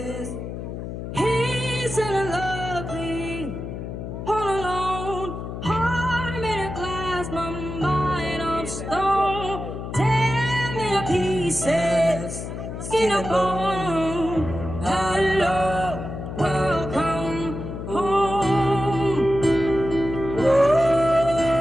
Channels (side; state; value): left; noise; hum, 7 dB below the sound